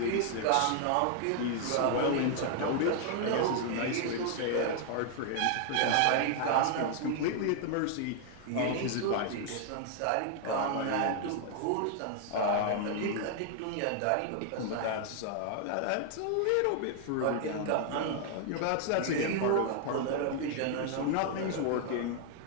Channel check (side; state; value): both; different; correlation 0.00